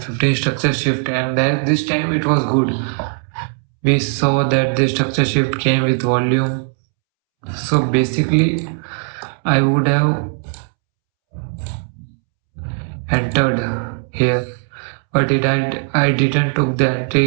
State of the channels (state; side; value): silent; left; 67 dB below the other